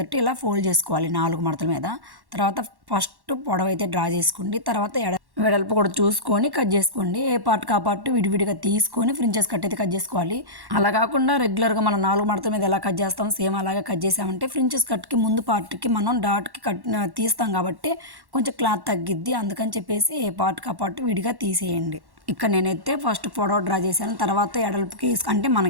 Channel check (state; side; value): late; left; 1.1 ms